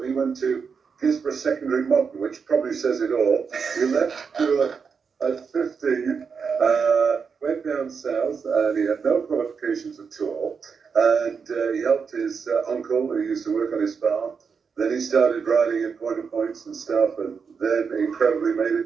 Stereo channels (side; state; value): left; quieter; 5.8 dB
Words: He went to Gisborne Secondary Modern, which probably says it all. He left school at 15, went down south, and he had no qualifications at all. And he helped his uncle, who used to work on his farm. Then he started riding in point of points and stuff, and then incredibly made